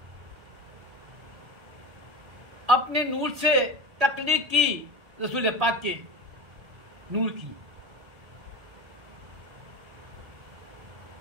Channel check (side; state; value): left; late; 1.8 ms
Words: अपने नूर से तख्लीक की, रसूल पाक के नूर की,